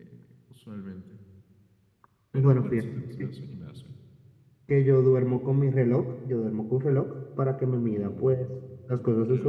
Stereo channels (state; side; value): identical; both; correlation 1.00